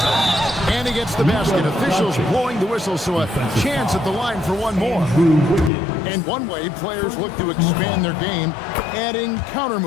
And he gets the basket. Officials blowing the whistle, so a chance at the line for one more. And one way players look to expand their game, adding counter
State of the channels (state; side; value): drops out; right; at 5.7 s